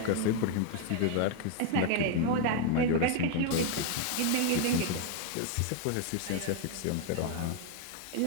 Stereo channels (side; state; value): both; different; correlation 0.00